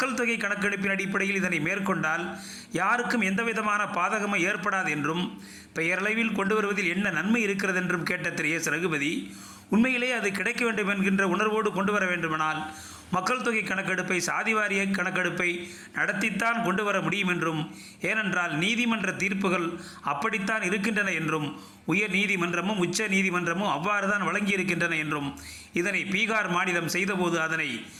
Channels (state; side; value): identical; both; correlation 1.00